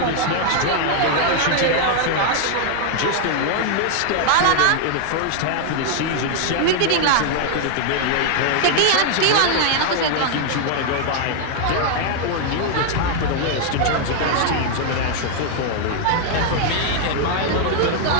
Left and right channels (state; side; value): different; both; correlation 0.00